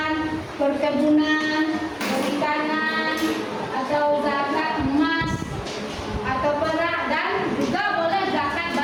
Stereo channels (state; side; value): identical; both; correlation 1.00